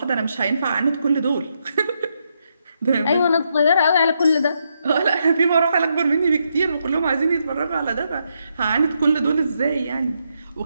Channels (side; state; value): both; inverted; correlation -0.80